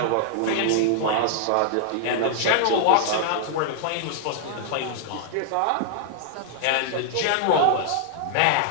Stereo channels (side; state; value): both; different; correlation -0.01